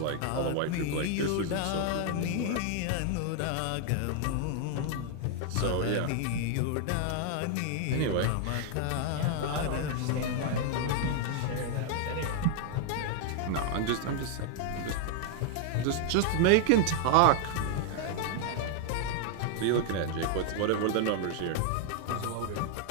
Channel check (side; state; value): both; different; correlation 0.00